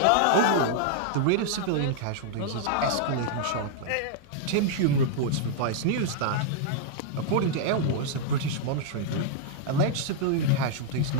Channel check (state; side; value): different; both; correlation -0.01